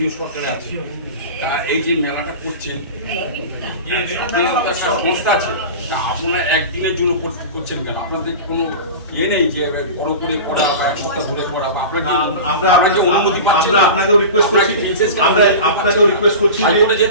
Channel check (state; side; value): inverted; both; correlation -0.31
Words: সরকারে আছে, তা এই যে মেলাটা করছেন, একটা সংস্থা আছে, তা আপনারা একদিনের জন্য করছেন কেন? আপনাদের কোনো ইয়ে নেই যে বড় করে করা বা এক সপ্তাহ ধরে করা, বা আপনাকে অনুমতি পাচ্ছেন? আপনাকেও রিকোয়েস্ট করছি, আপনাকেও রিকোয়েস্ট করছি হাইকোর্টে